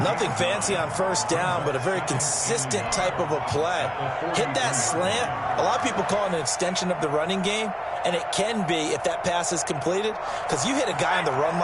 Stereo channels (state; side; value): identical; both; correlation 1.00